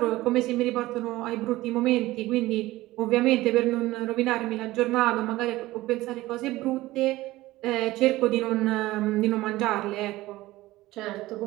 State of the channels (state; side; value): quieter; left; 17.7 dB